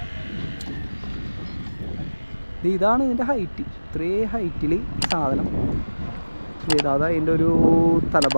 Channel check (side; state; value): both; inverted; correlation -1.00